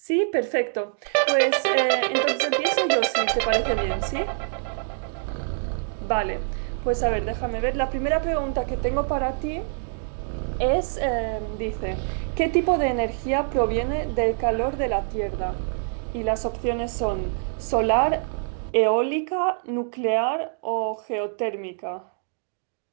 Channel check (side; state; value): left; silent; digital silence